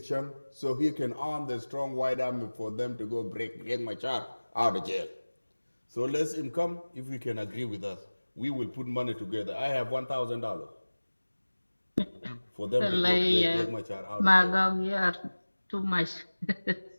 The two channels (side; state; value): both; inverted; correlation -1.00